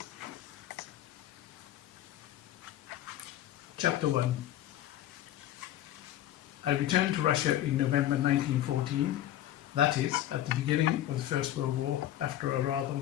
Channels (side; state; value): right; quieter; 12.7 dB